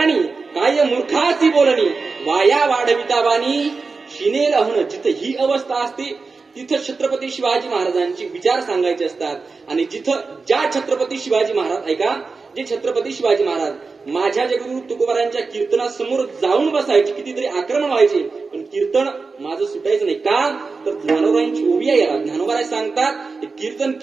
काय मूर्खाची बोलणी, वाया वाढवितावानी शिनेल अहन. जिथं ही अवस्था असते तिथं छत्रपती शिवाजी महाराजांचे विचार सांगायचे असतात. आणि जिथं ज्या छत्रपती शिवाजी महाराज, ऐका, जे छत्रपती शिवाजी महाराज माझ्या जगगुरु तुकोबारायांच्या कीर्तनासमोर जाऊन बसायचे, कितीतरी आक्रमण व्हायचे, पण कीर्तन माझं सुटायचं नाही. का तर ज्ञानोबारायांची ओवी आहे याला. ज्ञानोबाराय सांगतात कीर्तन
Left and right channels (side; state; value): left; quieter; 4.3 dB